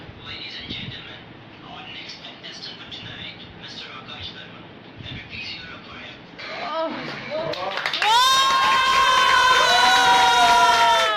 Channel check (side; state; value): both; identical; correlation 1.00